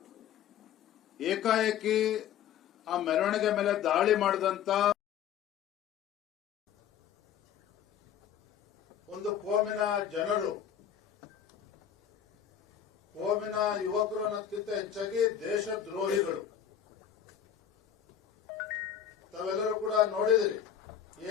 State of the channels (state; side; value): quieter; right; 9.2 dB